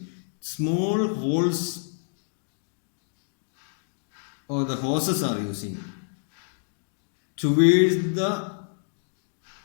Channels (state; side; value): silent; right; 60 dB below the other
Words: small holes, or the hoses are using towards the